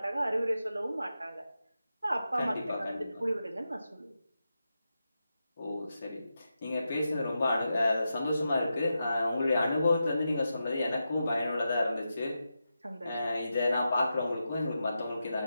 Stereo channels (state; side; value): inverted; both; correlation -0.89